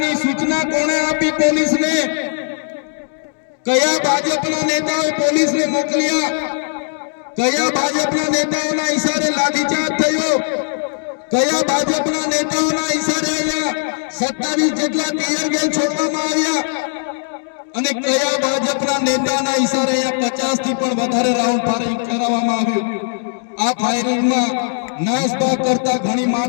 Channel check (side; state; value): right; silent; 67 dB below the other